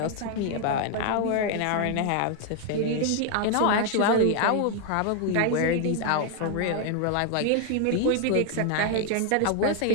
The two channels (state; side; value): different; both; correlation 0.00